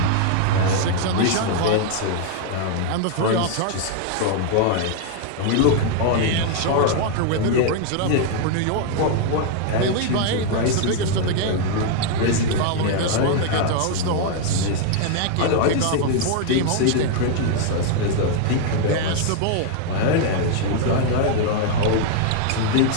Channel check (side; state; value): both; different; correlation 0.00